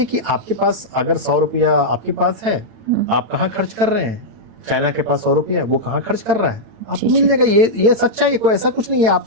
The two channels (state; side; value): late; left; 8.9 ms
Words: कि आपके पास अगर 100 रुपया आपके पास है, आप कहाँ खर्च कर रहे हैं। चाइना के पास 100 रुपया, वो कहाँ खर्च कर रहा है, आपको जी, मिल जी। जाएगा। ये सच्चाई है, कोई ऐसा कुछ नहीं है। आप